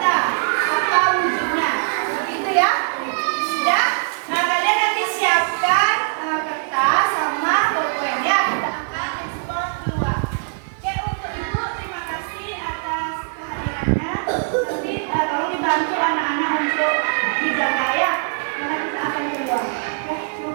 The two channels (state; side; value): silent; left; 56 dB below the other